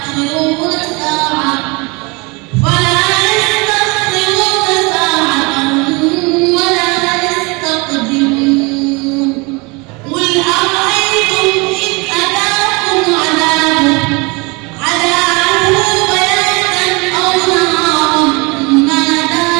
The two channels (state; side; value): quieter; left; 27.8 dB